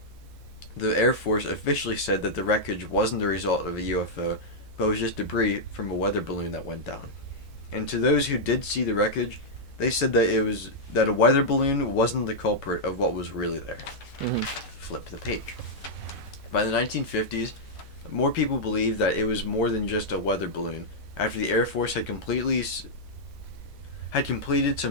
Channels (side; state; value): both; normal; correlation -0.06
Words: the Air Force officially said that the wreckage wasn't the result of a UFO, but was just debris from a weather balloon that went down. And to those who did see the wreckage, they said that a weather balloon wasn't the culprit of what was really there. Mm-hmm. Flip the page. By the 1950s, more people believed that it was more than just a weather balloon after the Air Force had completed